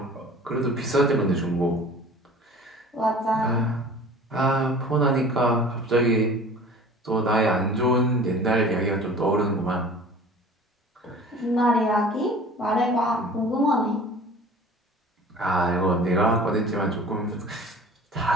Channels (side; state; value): both; normal; correlation 0.44